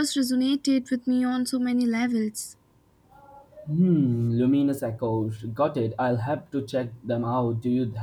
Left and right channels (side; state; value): both; identical; correlation 1.00